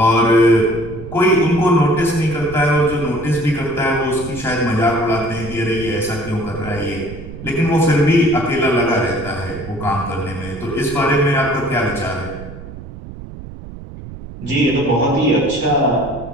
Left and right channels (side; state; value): right; noise; rumble, 13 dB below the sound